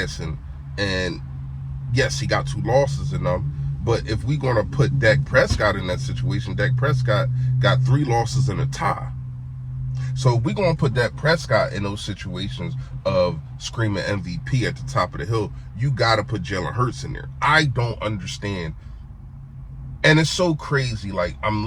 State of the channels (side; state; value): both; identical; correlation 1.00